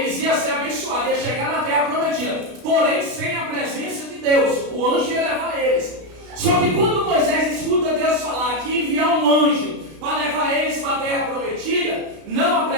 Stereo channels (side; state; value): left; late; 32 ms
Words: iam ser abençoados, iam chegar na terra prometida. Porém, sem a presença de Deus, o anjo ia levar eles. Só que quando Moisés escuta Deus falar que ia enviar um anjo para levar eles para a terra prometida, não a